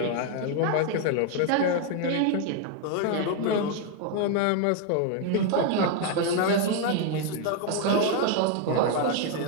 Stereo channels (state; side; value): different; both; correlation 0.01